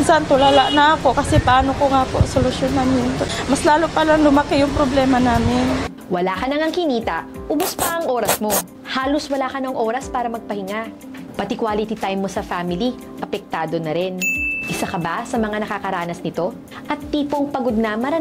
tulala na ako kasi paano ko nga po solusyonan yun. Mas lalo palang lumaki yung problema namin. Wala ka nang kinita, ubos pa ang oras mo. Halos wala ka ng oras para magpahinga. Pati quality time mo sa family, apektado na rin. Isa ka ba sa mga nakakaranas nito? At tipong pagod na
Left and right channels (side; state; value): both; identical; correlation 1.00